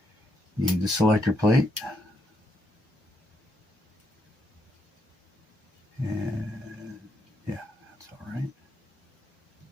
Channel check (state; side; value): normal; both; correlation 0.77